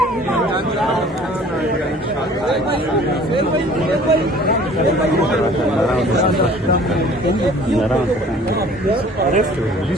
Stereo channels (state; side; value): normal; both; correlation 0.51